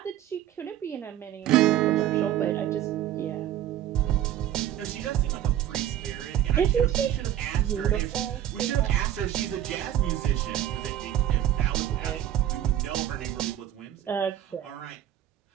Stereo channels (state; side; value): quieter; left; 11.6 dB